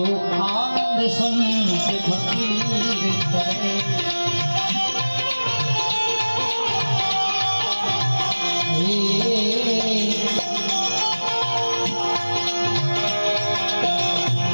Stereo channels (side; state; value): both; inverted; correlation -1.00